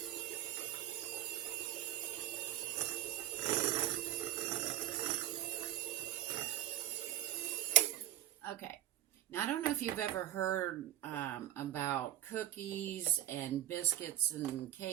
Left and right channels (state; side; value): quieter; left; 13.3 dB